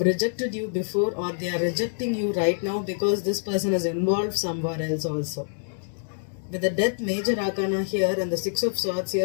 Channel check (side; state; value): right; silent; digital silence